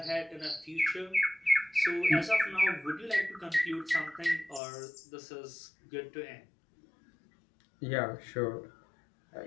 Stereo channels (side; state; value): right; drops out; at 4.6 s